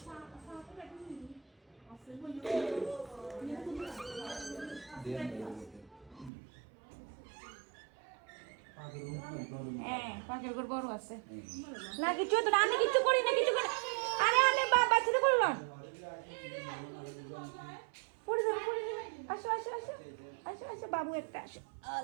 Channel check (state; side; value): drops out; left; at 6.3 s